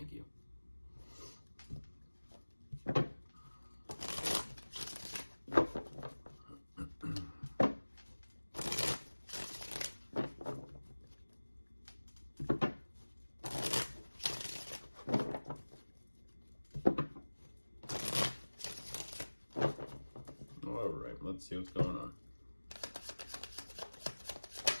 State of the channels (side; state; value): both; inverted; correlation -1.00